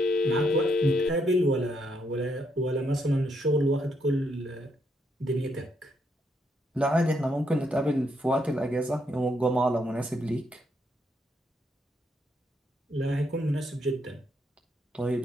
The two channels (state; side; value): normal; both; correlation 0.76